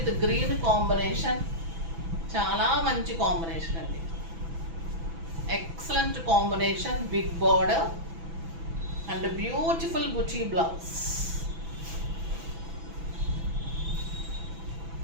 green combination, చాలా మంచి కాంబినేషన్ అండి. Excellent combination. Big border and beautiful బుటీ బ్లౌజ్.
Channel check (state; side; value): late; left; 6.0 ms